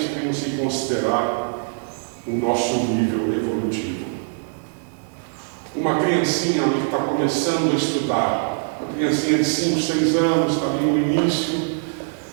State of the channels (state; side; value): silent; left; 60 dB below the other